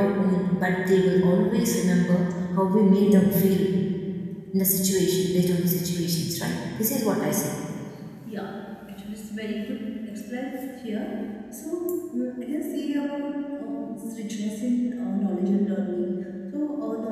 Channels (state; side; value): identical; both; correlation 1.00